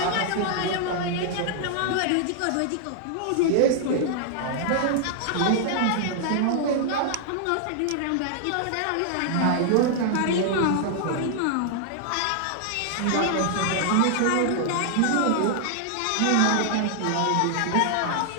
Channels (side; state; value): both; different; correlation -0.01